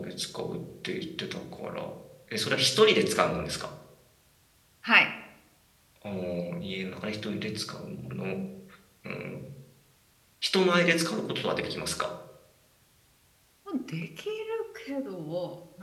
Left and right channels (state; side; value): identical; both; correlation 1.00